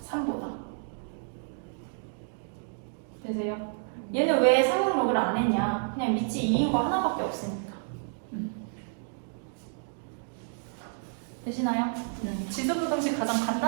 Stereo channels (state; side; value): silent; left; digital silence